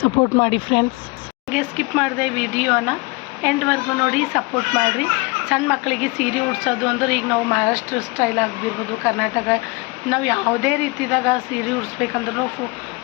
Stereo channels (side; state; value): right; quieter; 25.9 dB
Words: ಸಪೋರ್ಟ್ ಮಾಡಿ ಫ್ರೆಂಡ್ಸ್. ಹಾಗೆ ಸ್ಕಿಪ್ ಮಾಡಿದೆ ವಿಡಿಯೋನ ಎಂಡ್ವರೆಗೂ ನೋಡಿ ಸಪೋರ್ಟ್ ಮಾಡಿರಿ. ಸಣ್ಣ ಮಕ್ಕಳಿಗೆ ಸೀರೆ ಉಡ್ಸೋದು ಅಂದ್ರೆ ಈಗ ನಾವು ಮಹಾರಾಷ್ಟ್ರ ಸ್ಟೈಲ್ ಆಗಿರ್ಬೋದು, ಕರ್ನಾಟಕ ನಾವು ಯಾವುದೇ ರೀತಿದಾಗ ಸೀರೆ ಉಡಿಸ್ಬೇಕಂದ್ರೂ